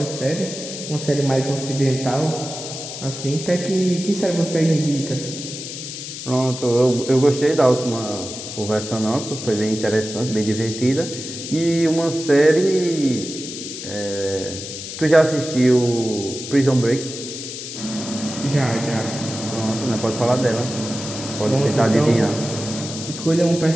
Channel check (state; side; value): noise; left; hiss, 9 dB below the sound